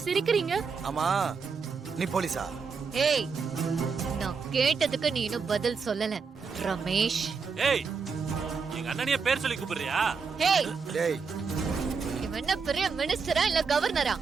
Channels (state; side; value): quieter; left; 5.4 dB